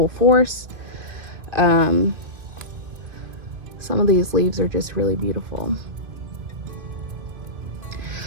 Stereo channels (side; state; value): left; late; 2.4 ms